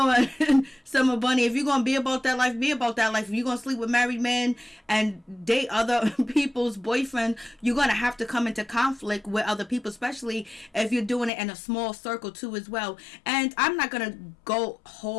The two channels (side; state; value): right; drops out; at 11.3 s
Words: Summer Bunny, if you're gonna be about that life, be about that life. If you're gonna sleep with married men and date other people's boyfriends, you're gonna have to come into conflict with other people, especially if you're doing it in a small circle too as well. And I'm not gonna go